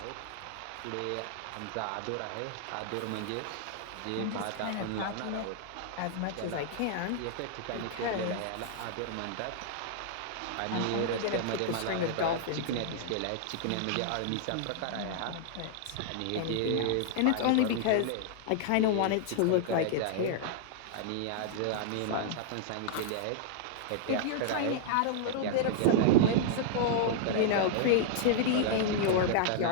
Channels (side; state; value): both; different; correlation -0.01